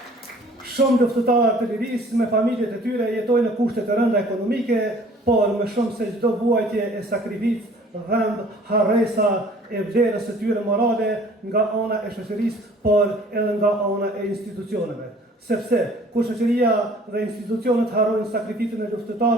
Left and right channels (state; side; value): normal; both; correlation 0.53